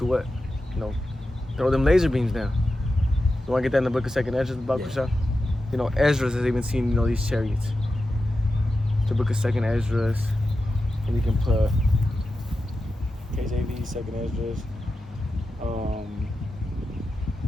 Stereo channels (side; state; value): both; normal; correlation 0.91